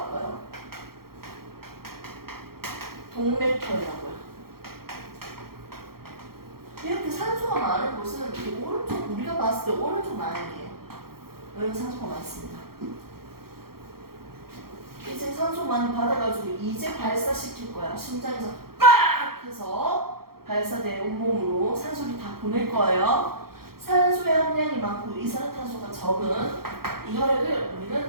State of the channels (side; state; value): left; late; 0.94 ms